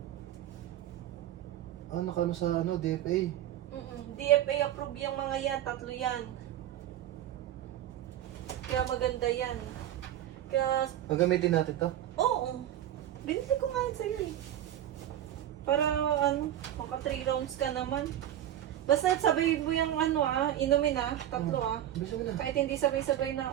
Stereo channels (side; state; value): left; quieter; 12.0 dB